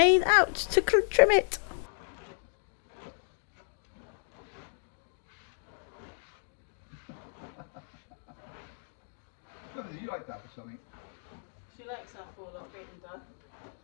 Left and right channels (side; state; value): right; silent; digital silence